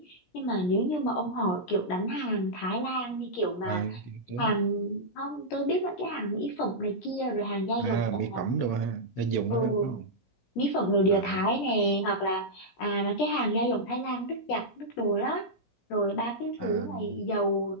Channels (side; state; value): right; late; 17 ms